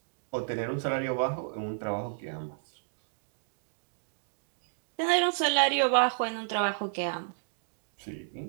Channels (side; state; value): left; silent; digital silence